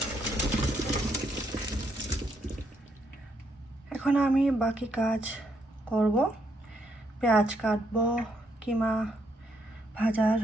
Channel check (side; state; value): both; normal; correlation 0.75